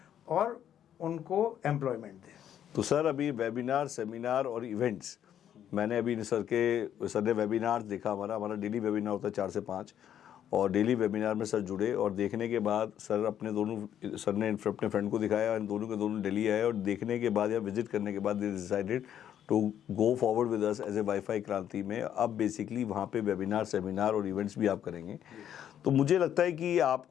और उनको एम्प्लॉयमेंट दें। तो सर, अभी वेबिनार, सेमिनार और इवेंट्स, मैंने अभी सर ने वेबिनार देखा। हमारा डेली वेबिनार होता है 4 से 5, और डेली वेबिनार में सर जुड़े, और देखने के बाद सर ने अपने फ्रेंड को दिखाया, इन दोनों के दोनों दिल्ली आए, और देखने के बाद या विजिट करने के बाद they decided to go forward with us as a wifi Kranti में। अब बेसिकली वहाँ पे वेबिनार, सेमिनार और इवेंट्स भी आप करेंगे। तो मुझे लगता है कि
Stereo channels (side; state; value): right; quieter; 10.1 dB